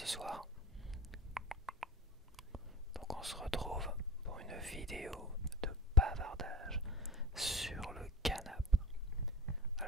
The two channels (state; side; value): normal; both; correlation 0.32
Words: soir? Donc on se retrouve pour une vidéo de bavardage sur le canap.